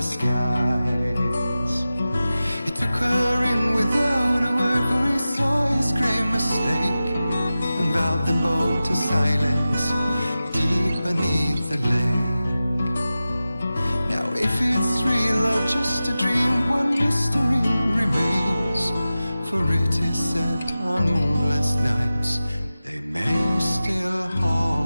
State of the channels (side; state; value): both; inverted; correlation -0.95